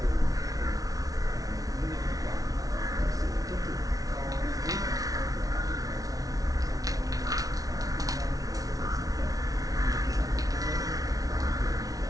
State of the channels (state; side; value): late; left; 0.18 ms